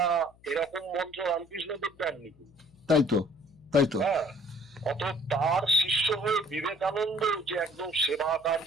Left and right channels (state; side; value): noise; left; hum, 28 dB below the sound